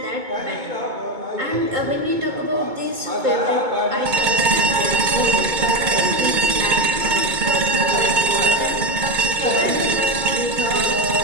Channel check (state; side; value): late; left; 2.2 ms